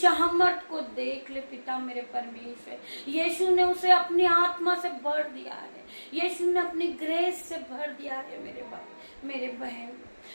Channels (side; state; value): both; inverted; correlation -1.00